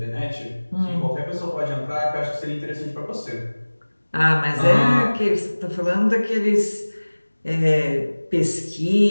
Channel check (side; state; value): both; inverted; correlation -1.00